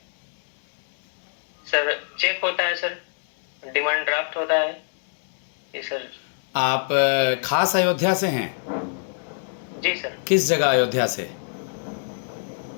सर चेक होता है सर, डिमांड ड्राफ्ट होता है ये सर। आप खास अयोध्या से हैं? जी सर। किस जगह अयोध्या से?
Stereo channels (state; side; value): silent; right; digital silence